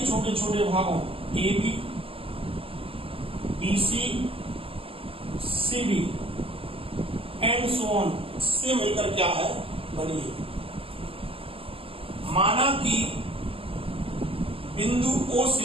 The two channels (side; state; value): left; late; 0.27 ms